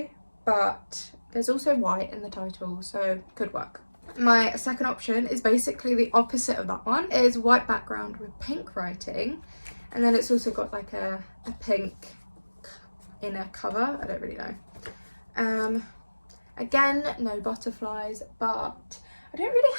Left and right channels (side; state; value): both; inverted; correlation -1.00